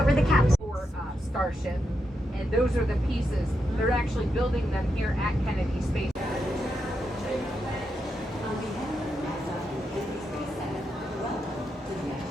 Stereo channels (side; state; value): both; normal; correlation 0.84